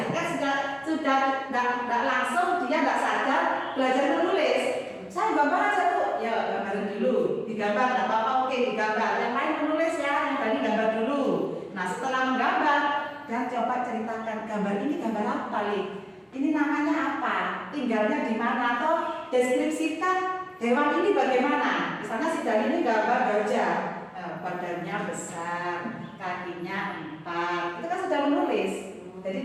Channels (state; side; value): identical; both; correlation 1.00